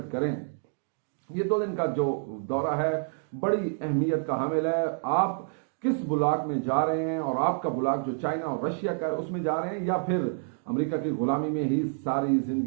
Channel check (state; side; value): silent; left; 59 dB below the other